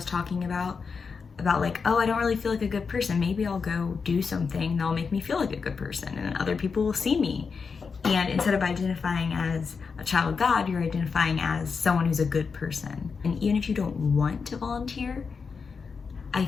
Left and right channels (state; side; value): quieter; right; 5.3 dB